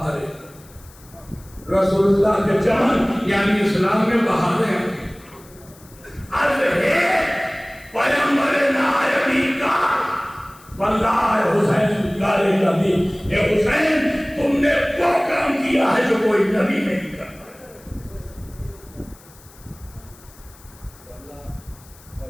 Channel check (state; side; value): noise; left; hiss, 24 dB below the sound